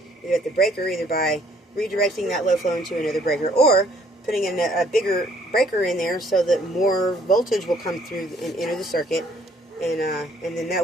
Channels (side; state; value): both; normal; correlation 0.62